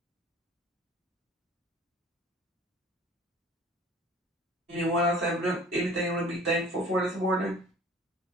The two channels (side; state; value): both; normal; correlation 0.47